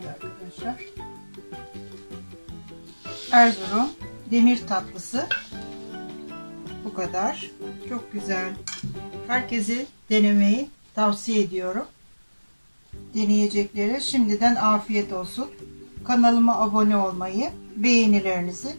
arkadaşlar. Erzurum demir tatlısı bu kadar. Çok güzel. Herkese denemeyi tavsiye ediyorum. Deneyeceklere şimdiden afiyet olsun. Kanalıma abone olmayı, beğenilerinizi,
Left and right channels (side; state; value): both; inverted; correlation -1.00